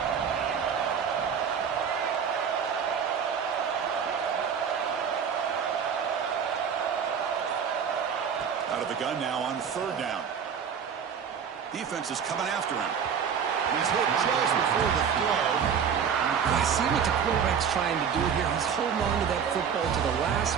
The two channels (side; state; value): left; quieter; 7.3 dB